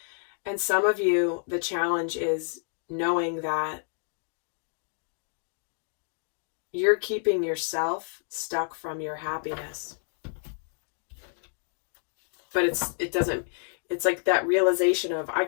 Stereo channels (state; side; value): silent; right; 58 dB below the other